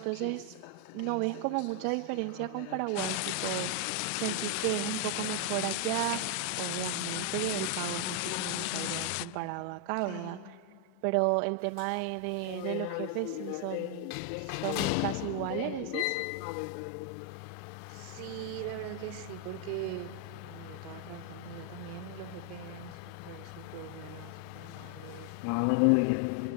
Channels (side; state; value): both; different; correlation 0.00